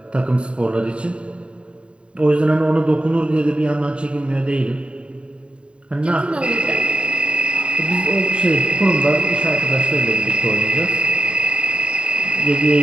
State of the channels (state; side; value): late; left; 0.056 ms